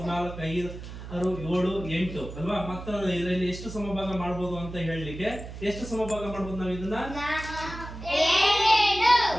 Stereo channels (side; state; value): right; noise; hum, 11 dB below the sound